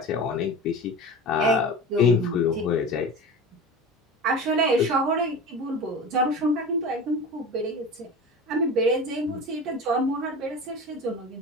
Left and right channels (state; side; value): normal; both; correlation 0.32